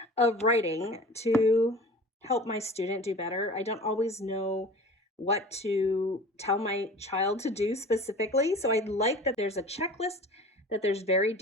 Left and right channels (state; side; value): normal; both; correlation 0.40